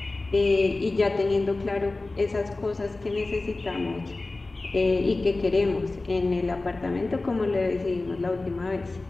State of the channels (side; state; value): right; quieter; 3.2 dB